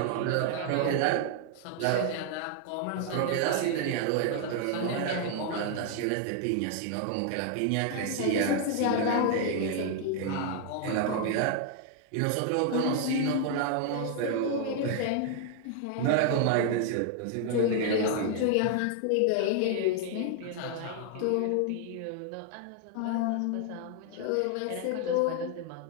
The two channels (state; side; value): different; both; correlation 0.00